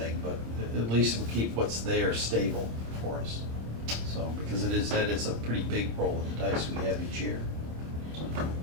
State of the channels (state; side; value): late; left; 26 ms